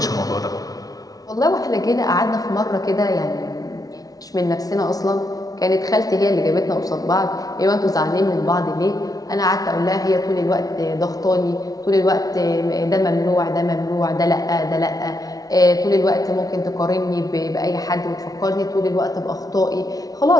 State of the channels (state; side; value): late; right; 0.18 ms